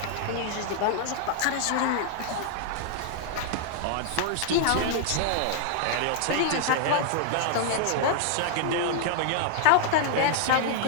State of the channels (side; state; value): both; different; correlation -0.01